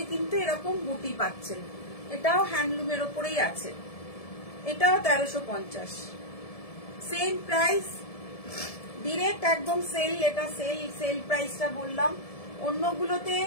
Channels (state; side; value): late; right; 1.7 ms